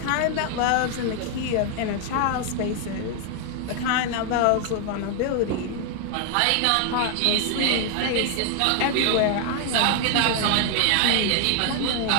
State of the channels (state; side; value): different; both; correlation 0.00